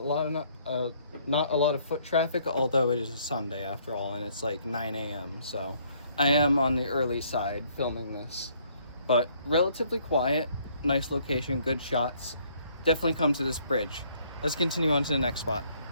a lot of foot traffic, although it is a Sunday after all, and it's like 9 a.m. So I am on the early side filming this, but relatively quiet, nice location, good shots. Definitely come to this bridge. Let's continue on to the next spot.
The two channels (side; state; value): both; inverted; correlation -0.65